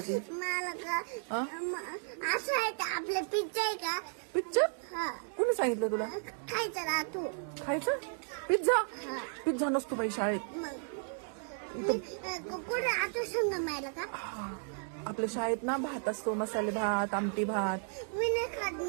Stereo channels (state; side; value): silent; left; 55 dB below the other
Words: मला का हा? असं आहे का आपलं पिझ्झा आहे का? पिक्चर? हा कोणी सांगितलं तुला? खायचं ना तू. खायचं? पिझ्झा? हा पिझ्झा नसतो बाई शाळेत. मग मी कुठे आता संग मिळालं का? आपल्या शाळेत ना भात असतो, मसाले भात, आमटी भात. मी नाही खात